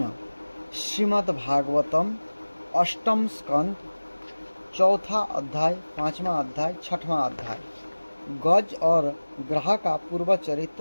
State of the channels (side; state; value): both; inverted; correlation -1.00